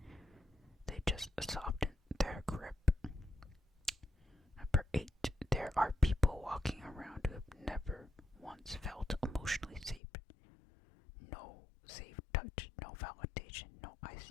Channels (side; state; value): right; drops out; at 10.0 s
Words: They just soften their grip. Number 8, there are people walking around who have never once felt emotionally safe. No safe touch, no validation, no I